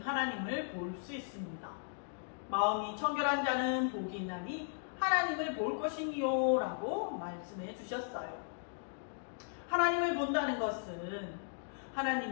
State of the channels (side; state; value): right; silent; digital silence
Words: 하나님을 볼 수 있습니다. 마음이 청결한 자는 복이 있나니 하나님을 볼 것이니요 라고 말씀해 주셨어요. 하나님을 본다는 것은